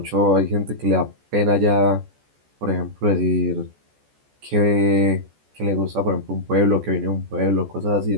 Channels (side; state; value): left; late; 14 ms